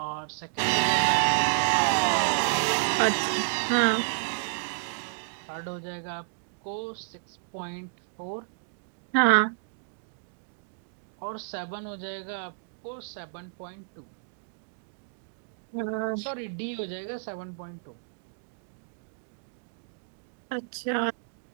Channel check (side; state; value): left; silent; digital silence